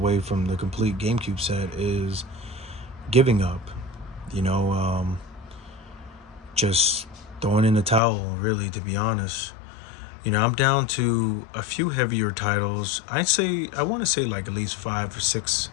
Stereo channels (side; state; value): right; drops out; at 8.0 s